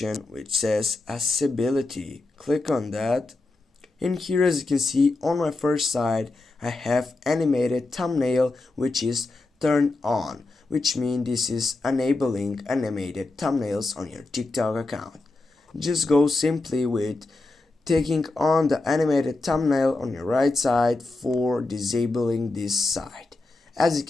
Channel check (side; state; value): right; quieter; 3.2 dB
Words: which says accessibility. Click on that. In here, as you can see on my first side, I have animated thumbnail which is turned on, which means this is enabling animated thumbnails on your TikTok account. Just go simply with taking on the animated thumbnail on your right side for disabling this side. As you